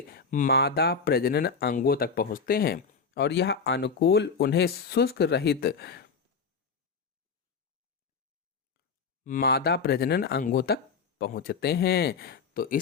मादा प्रजनन अंगों तक पहुंचते हैं और यह अनुकूल उन्हें शुष्क रहित मादा प्रजनन अंगों तक पहुंचते हैं। तो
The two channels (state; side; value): quieter; right; 5.4 dB